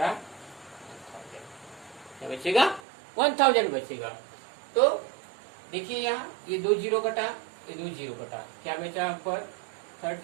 1000, क्या बचेगा 1000 बचेगा। तो देखिए यहाँ ये 2 जीरो कटा, ये 2 जीरो कटा, क्या बचा पर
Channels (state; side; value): drops out; left; at 2.8 s